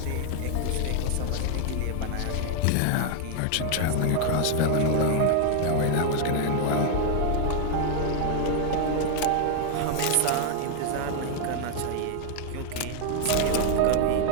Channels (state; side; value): different; both; correlation 0.00